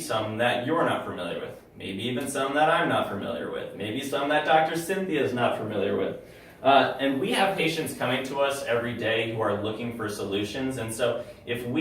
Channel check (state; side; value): identical; both; correlation 1.00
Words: that you're not familiar with, maybe even some that I'm not familiar with, maybe some that Dr. Cynthia is not familiar with. And we have patients coming to us every day who are looking for solutions. And so if